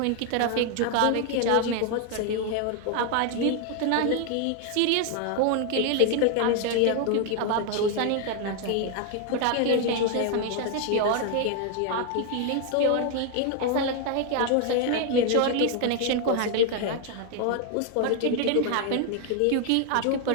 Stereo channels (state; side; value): different; both; correlation 0.00